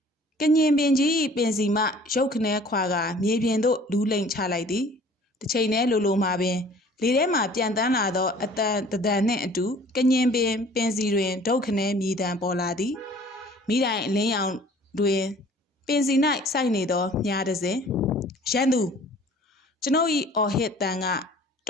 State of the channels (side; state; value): both; normal; correlation 0.51